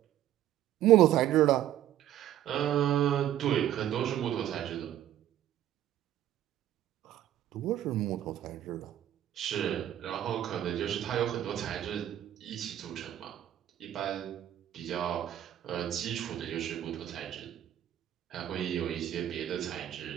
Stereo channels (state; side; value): quieter; left; 12.0 dB